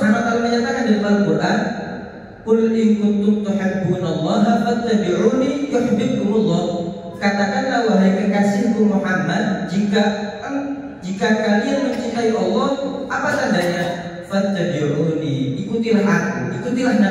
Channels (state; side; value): identical; both; correlation 1.00